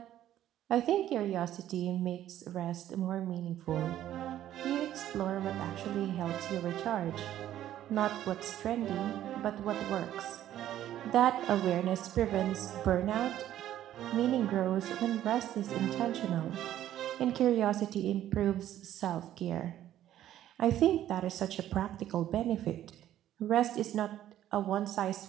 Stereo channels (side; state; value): left; quieter; 12.2 dB